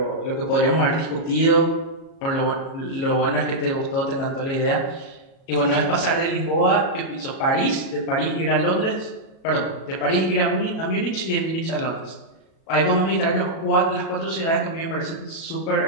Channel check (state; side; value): late; right; 37 ms